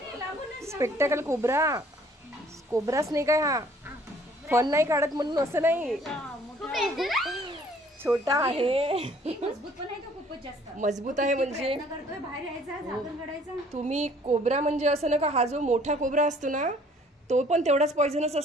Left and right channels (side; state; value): both; normal; correlation 0.58